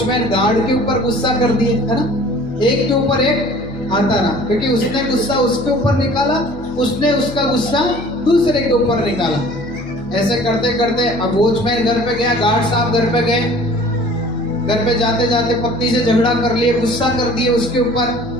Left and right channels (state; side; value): noise; left; hum, 16 dB below the sound